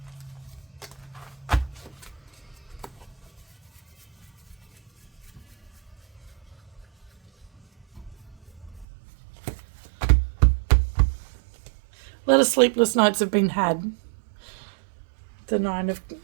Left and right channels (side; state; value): left; drops out; at 8.8 s